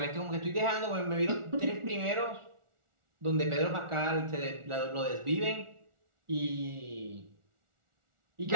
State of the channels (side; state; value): left; late; 1.4 ms